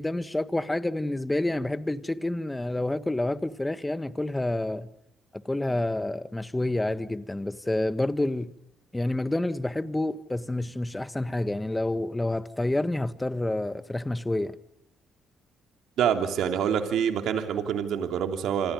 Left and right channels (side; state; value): both; normal; correlation 0.86